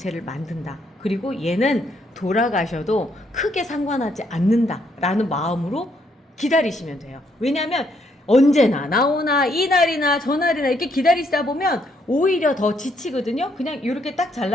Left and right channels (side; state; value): both; normal; correlation 0.72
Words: 만든다. 그리고 얘는 돌아가셔도 크게 상관하지 않는다 라는 마음으로 기다리시면 돼요. 왜냐하면 언제나 나오나 이날이나 저날이나 이렇게 기다리시다 보면 오히려 더 지치거든요. 그냥 이렇게 딱